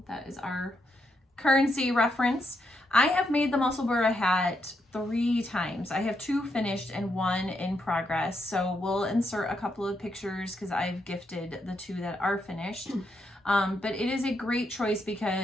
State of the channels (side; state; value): both; normal; correlation 0.80